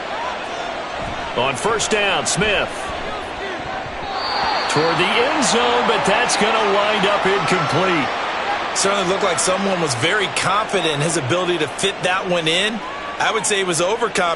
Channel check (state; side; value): identical; both; correlation 1.00